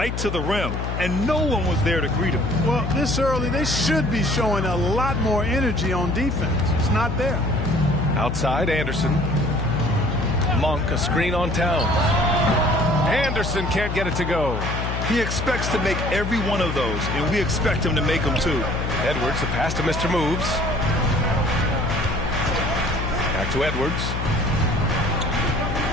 to the rim, and no one was there to greet him. Well, this early, they should be showing a lot more energy on defense. It's not there. Outside, Anderson. Monk, a screen on Towns. Anderson can't get it to go. He expects to make every one of those, and we expect him to make them too. Edwards, the pass to Mr. Moves. Back to Edwards.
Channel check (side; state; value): left; noise; hum, 3 dB below the sound